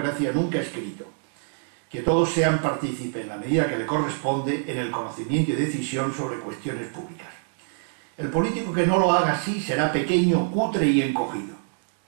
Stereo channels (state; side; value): silent; left; digital silence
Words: nunca escrito, que todos sean partícipes en la medida que le corresponde en el conocimiento y decisión sobre cuestiones públicas. El político que no lo haga así será pequeño, cutre y encogido.